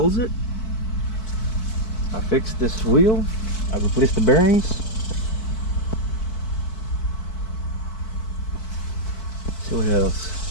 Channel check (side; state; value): right; late; 4.6 ms